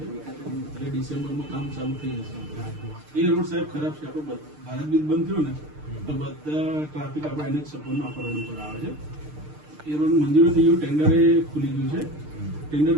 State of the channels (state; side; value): late; left; 6.6 ms